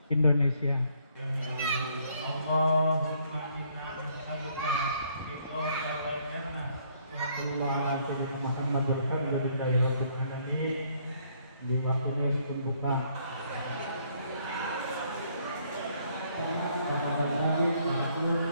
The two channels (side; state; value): both; inverted; correlation -0.67